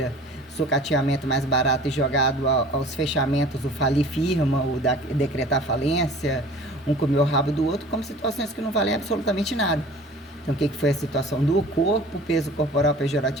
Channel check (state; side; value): normal; both; correlation 0.44